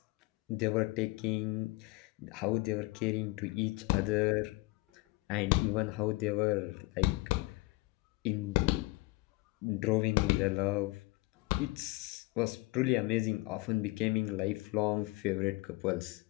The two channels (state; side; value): quieter; right; 22.6 dB